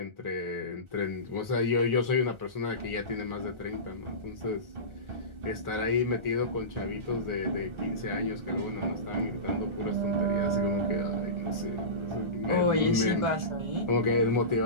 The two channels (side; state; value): left; late; 1.4 ms